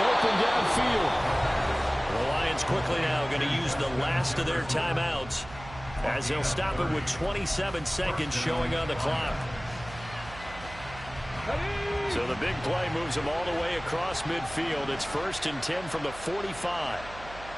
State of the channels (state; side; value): noise; right; hum, 16 dB below the sound